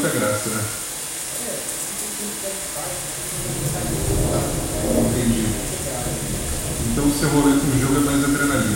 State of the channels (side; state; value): both; identical; correlation 1.00